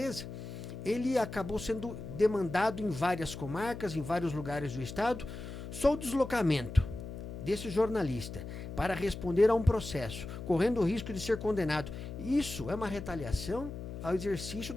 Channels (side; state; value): left; noise; hum, 9 dB below the sound